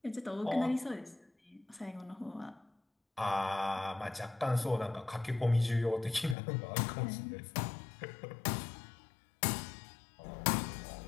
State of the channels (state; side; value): drops out; right; at 6.4 s